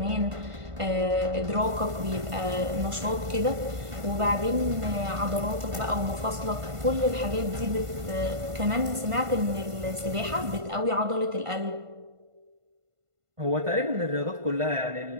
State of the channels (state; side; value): late; left; 1.5 ms